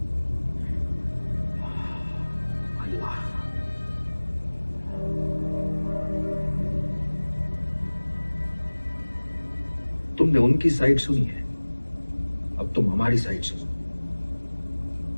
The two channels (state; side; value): inverted; both; correlation -1.00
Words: अल्लाह। तुमने उनकी साइड सुनी है, अब तुम हमारी साइड सुनो।